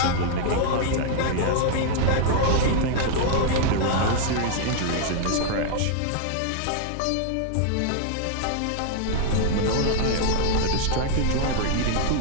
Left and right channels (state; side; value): different; both; correlation 0.00